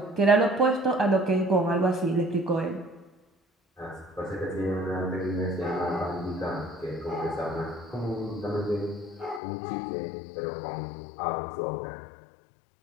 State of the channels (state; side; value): drops out; right; at 9.4 s